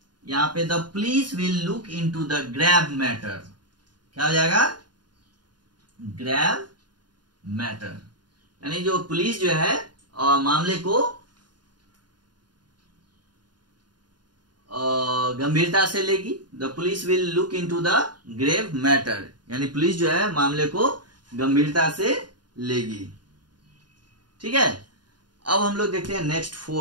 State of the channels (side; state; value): left; late; 0.70 ms